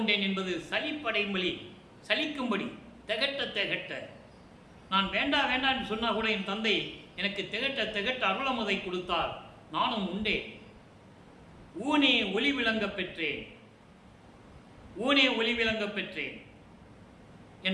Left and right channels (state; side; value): identical; both; correlation 1.00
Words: என்பது சலிப்படைமொழி, சலிக்கும்படி, திகட்ட திகட்ட. நான் வேண்டாம் வேண்டாம் என்று சொன்னால் கூட என் தந்தை எனக்கு திகட்ட திகட்ட அருளமுதை கொடுத்தார், நானும் உண்டேன். ஊனே ஒளி விளங்க பெற்றேன், ஊனே ஒளி விளங்க பெற்றேன்.